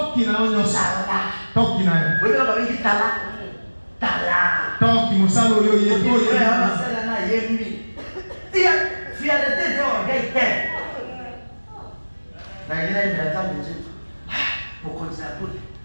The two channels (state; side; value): inverted; both; correlation -1.00